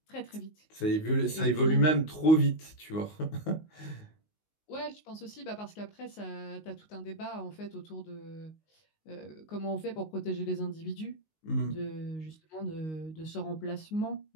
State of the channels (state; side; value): late; right; 19 ms